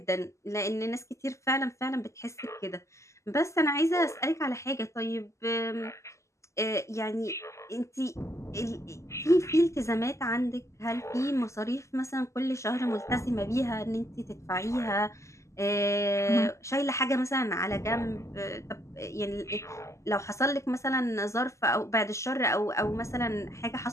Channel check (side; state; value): right; late; 0.14 ms